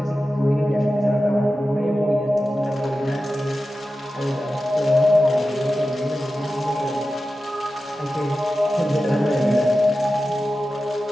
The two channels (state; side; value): normal; both; correlation 0.93